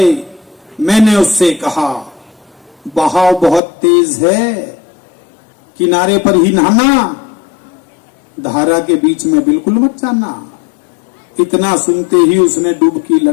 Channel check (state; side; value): drops out; right; at 3.6 s